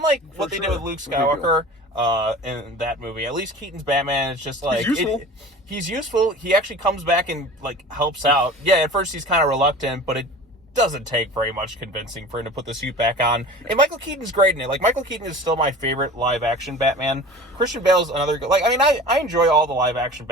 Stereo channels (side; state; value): both; normal; correlation 0.39